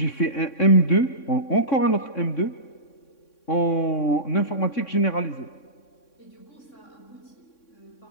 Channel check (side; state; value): right; late; 3.6 ms